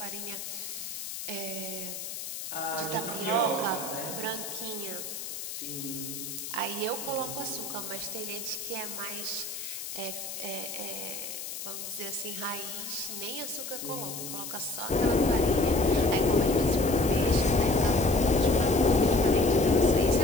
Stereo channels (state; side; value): noise; left; hiss, 7 dB below the sound